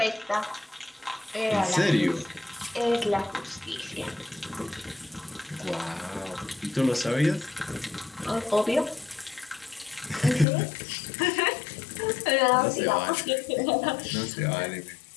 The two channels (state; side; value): drops out; right; at 10.5 s